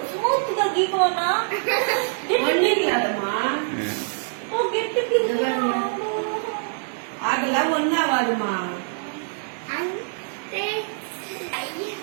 స్మూత్ గా గీకోనా ఆగలా ఉన్నావాడుమా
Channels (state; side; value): silent; left; digital silence